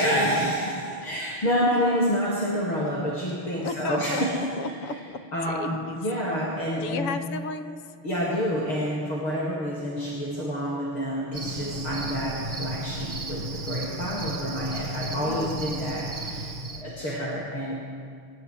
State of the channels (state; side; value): late; right; 6.5 ms